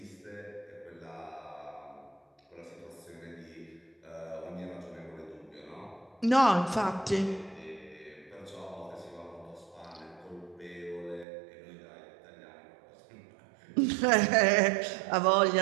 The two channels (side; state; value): left; drops out; at 11.2 s